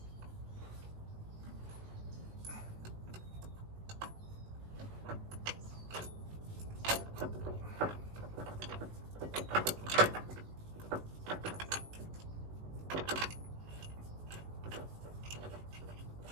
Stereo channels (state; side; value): late; left; 19 ms